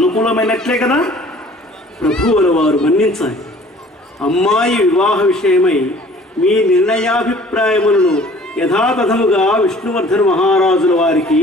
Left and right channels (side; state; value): both; normal; correlation 0.51